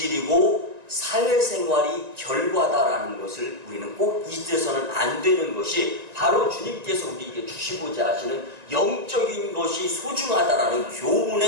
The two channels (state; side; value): late; left; 1.9 ms